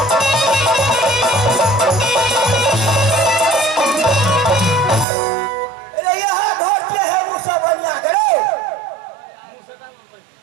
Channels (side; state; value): left; drops out; at 5.1 s